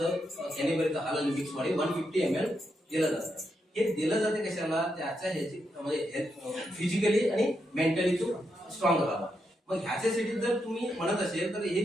कॅनिबरीचं हालन मिक्स मध्ये 150 ml दिलं जातं. हे दिलं जाते कशाला त्याच्या ह्याची म्हणजे फिजिकली आणि मेंटली तो स्ट्रॉंग राहावा. मग ह्याच्यासाठी जर तुम्ही म्हणत असेल तर हे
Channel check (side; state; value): both; normal; correlation 0.82